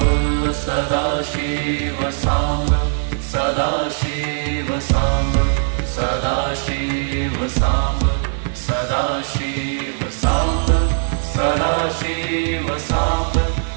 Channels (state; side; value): silent; left; digital silence